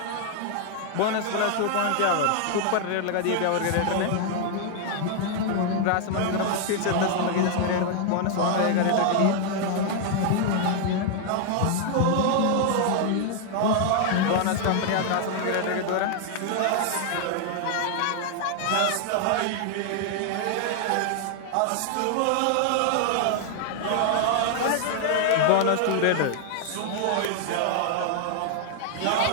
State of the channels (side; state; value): both; different; correlation 0.00